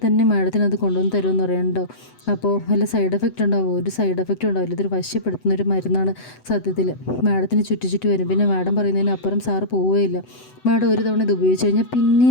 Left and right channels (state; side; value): late; right; 8.0 ms